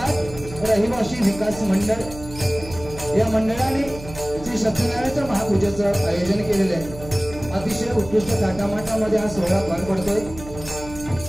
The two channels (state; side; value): noise; right; hum, 14 dB below the sound